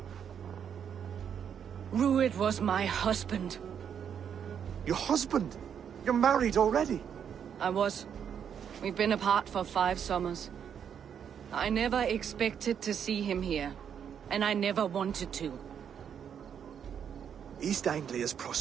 Rued was my husband. Your husband? You're married already? I was. We've been apart for 5 summers. I never expected to see him here, and I never wanted to. East Anglia's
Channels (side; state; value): left; quieter; 8.1 dB